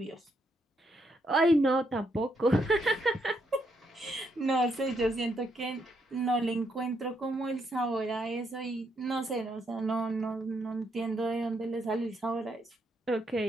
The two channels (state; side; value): normal; both; correlation 0.76